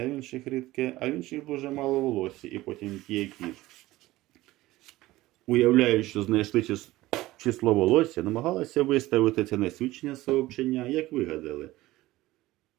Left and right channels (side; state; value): left; quieter; 17.7 dB